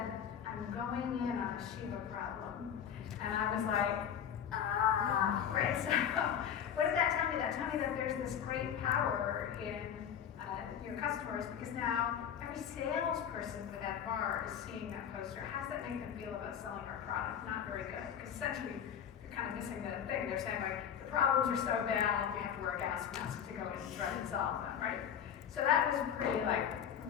"I'm going in on a Shiva problem." And I was like, right. So what did that tell me? That told me that there's this great power in your customers, because now every salesperson for that bar is seeing that poster. How does that make them feel about selling our product? Not very good, because essentially you're kind of missing the thing. They're saying, like, the problems are so bad, we have to wear a gas mask to go in and try and solve them, right? So that was pretty like,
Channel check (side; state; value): right; quieter; 8.7 dB